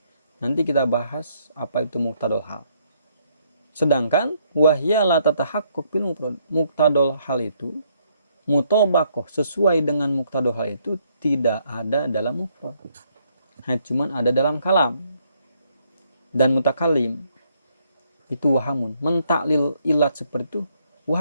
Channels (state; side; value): inverted; both; correlation -0.71